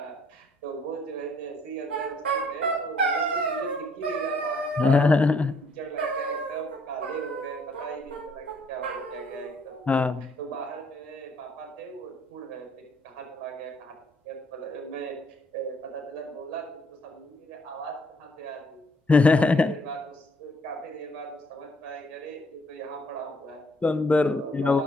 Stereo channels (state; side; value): normal; both; correlation 0.64